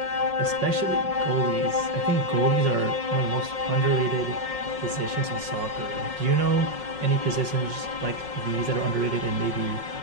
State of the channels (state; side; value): late; left; 5.5 ms